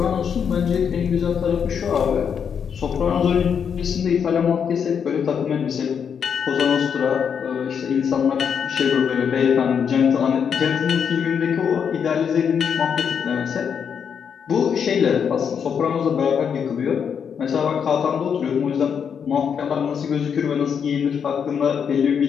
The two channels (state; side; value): quieter; right; 7.3 dB